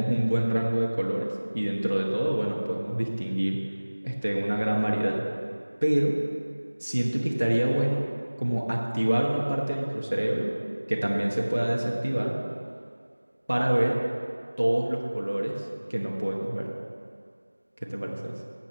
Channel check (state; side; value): inverted; both; correlation -1.00